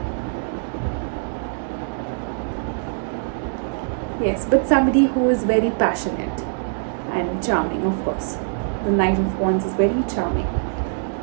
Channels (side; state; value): left; silent; 63 dB below the other